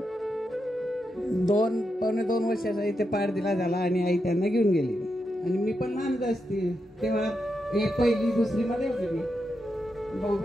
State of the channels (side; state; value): both; normal; correlation 0.85